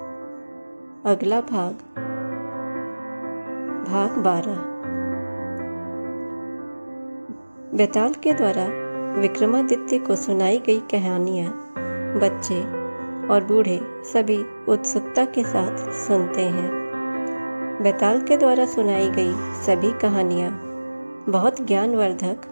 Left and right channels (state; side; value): inverted; both; correlation -1.00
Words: अगला भाग, भाग 12। बेताल के द्वारा विक्रमादित्य को सुनाई गई कहानियाँ बच्चे और बूढ़े सभी उत्सुकता के साथ सुनते हैं। बेताल के द्वारा सुनाई गई सभी कहानियाँ बहुत ज्ञानवर्धक